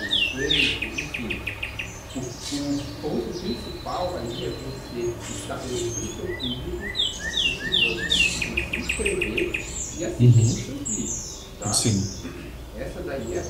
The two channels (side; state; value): both; identical; correlation 1.00